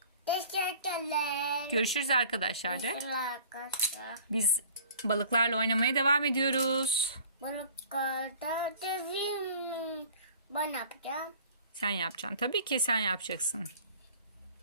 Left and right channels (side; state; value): both; inverted; correlation -0.49